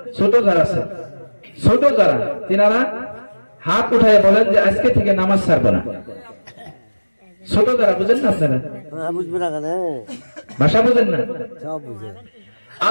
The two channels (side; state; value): both; inverted; correlation -1.00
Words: ছোট যারা আছে, ছোট যারা তিনারা হাত উঠায় বলেন যে আজকে থেকে নামাজ ছাড়বো না। ছোট যারা বুঝেন না, আপনারা ভাষা বুঝেন না।